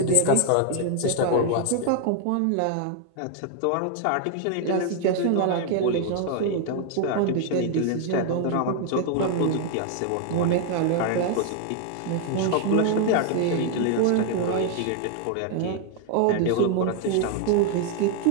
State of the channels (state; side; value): different; both; correlation 0.00